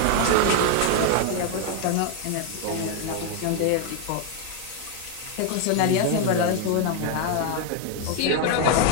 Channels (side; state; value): both; different; correlation 0.00